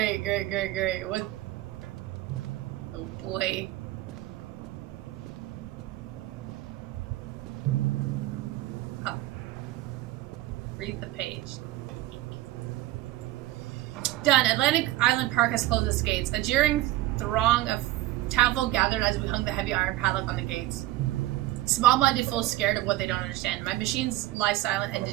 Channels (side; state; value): left; quieter; 16.3 dB